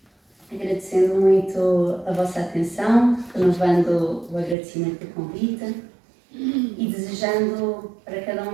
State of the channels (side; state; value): left; drops out; at 4.5 s